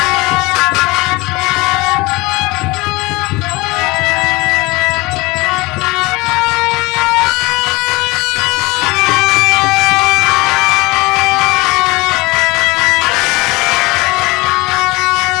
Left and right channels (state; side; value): quieter; right; 23.0 dB